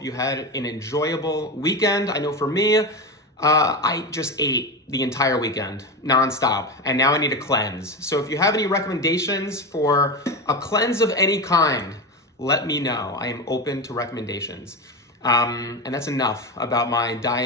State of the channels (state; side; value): normal; both; correlation 0.20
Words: you had an enjoyable weekend. I know for me, I just ate the entire weekend, nonstop, and now I need a cleanse. So if you have any recommendations for a cleanse of any kind, let me know. I am open to recommendations. And that's enough about my